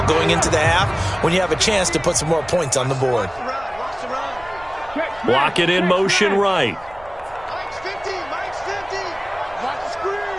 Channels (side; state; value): right; noise; rumble, 22 dB below the sound